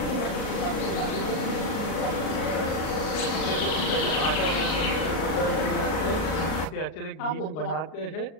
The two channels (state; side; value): late; right; 38 ms